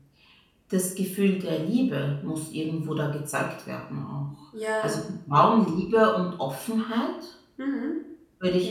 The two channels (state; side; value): identical; both; correlation 1.00